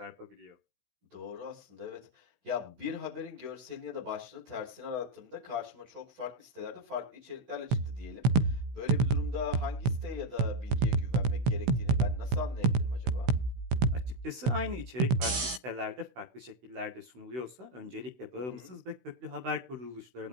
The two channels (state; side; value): late; left; 16 ms